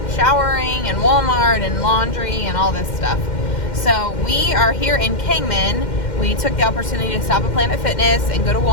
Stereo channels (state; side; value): late; right; 2.1 ms